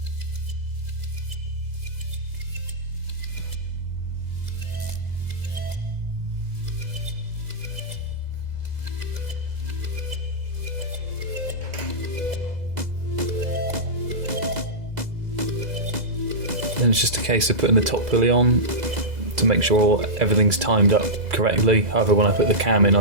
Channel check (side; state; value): left; late; 2.0 ms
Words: And it's just a case of putting the top pulley on to make sure everything's timed up correctly. However, when I put the cam in,